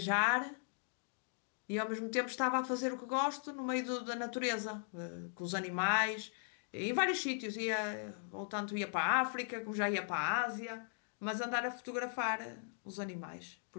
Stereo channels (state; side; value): silent; right; digital silence